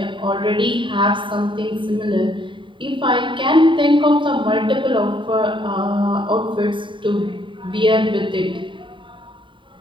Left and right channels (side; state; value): left; late; 0.24 ms